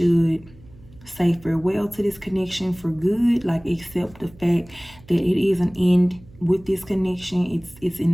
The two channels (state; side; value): noise; right; hum, 24 dB below the sound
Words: say farewell to this connection for good, like accept the fact that it is an end with this connection. It's